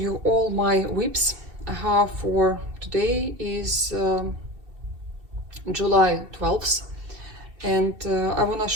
all my whips I have for today is July 12th, and I want to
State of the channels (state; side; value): late; left; 2.7 ms